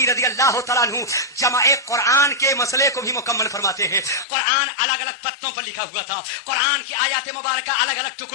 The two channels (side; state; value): right; drops out; at 4.2 s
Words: رضی اللہ تعالیٰ عنہ جمع قرآن کے مسئلے کو بھی مکمل فرماتے ہیں. قرآن الگ الگ پتوں پر لکھا ہوا تھا, قرآن کی آیات مبارکہ الگ الگ